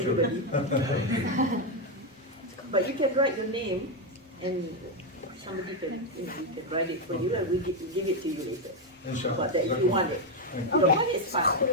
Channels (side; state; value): both; normal; correlation 0.04